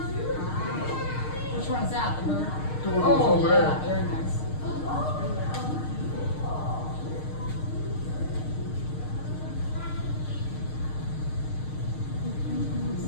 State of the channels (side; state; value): right; late; 6.5 ms